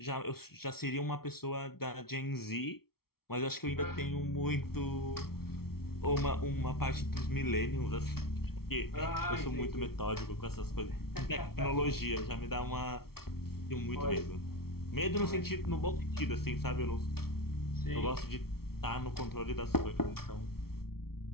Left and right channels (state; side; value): late; right; 0.94 ms